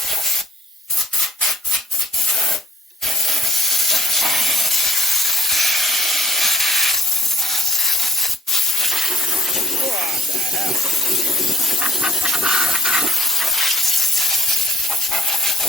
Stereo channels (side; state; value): both; normal; correlation 0.67